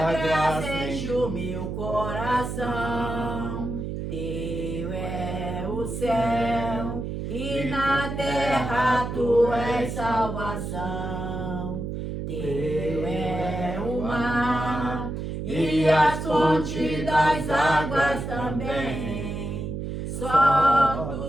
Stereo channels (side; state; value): right; noise; hum, 5 dB below the sound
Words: graça enche o meu coração. Teu é o céu e na terra tu és salvação. Teu é o mar e as fontes das águas também. Só